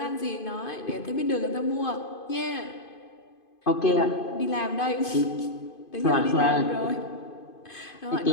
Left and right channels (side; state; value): right; late; 2.5 ms